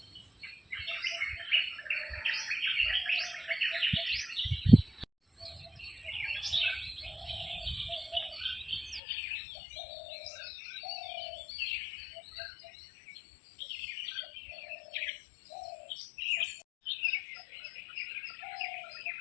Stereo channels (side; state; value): right; drops out; at 9.0 s